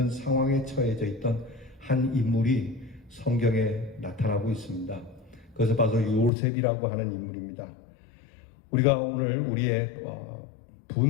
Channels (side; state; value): right; drops out; at 6.3 s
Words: 상황에 처해져 있던 한 인물이 성경에 나타나고 있습니다. 그것을 봐서 요셉이라고 하는 인물입니다. 우리가 오늘 우리의